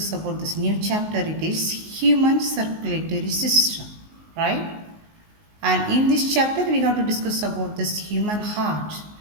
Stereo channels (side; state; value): left; late; 19 ms